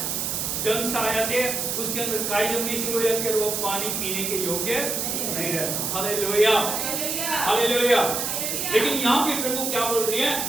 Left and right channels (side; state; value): right; noise; hiss, 1 dB below the sound